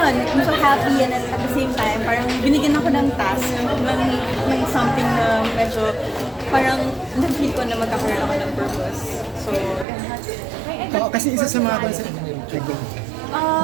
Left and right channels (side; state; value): left; drops out; at 9.9 s